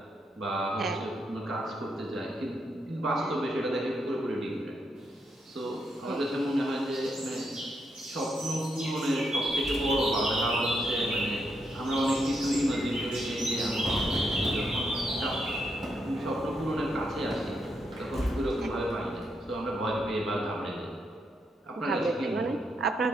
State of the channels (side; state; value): both; normal; correlation 0.79